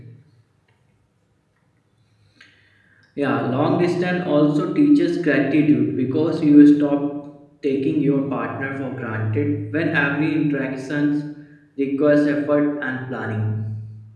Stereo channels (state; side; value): identical; both; correlation 1.00